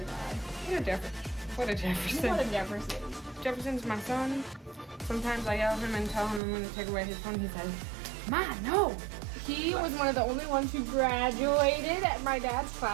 guy. What a Jefferson. What a Jefferson. What a Jefferson. Jefferson's my son. Sometimes I yell at him and tell him I'm gonna take away his phone. He says, Ma, no! He was one of the only ones who graduated at my dad's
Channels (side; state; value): left; drops out; at 6.4 s